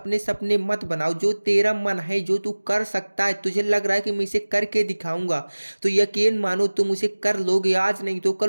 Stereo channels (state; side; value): inverted; both; correlation -1.00